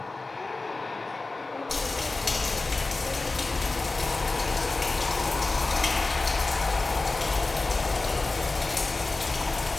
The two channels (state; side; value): quieter; right; 3.4 dB